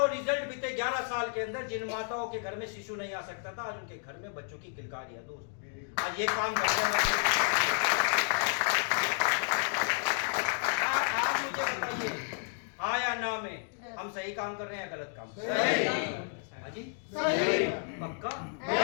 रिजल्ट बीते 11 साल के अंदर। जिन माताओं के घर में शिशु नहीं आ सकता था, आज उनके घर में बच्चों की किलकारी है दोस्त। आज ये काम करते हैं। आप मुझे बताइए, हाँ या ना में हम सही काम कर रहे हैं या गलत काम? सही। हाँ जी, सही। पक्का?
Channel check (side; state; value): right; silent; 57 dB below the other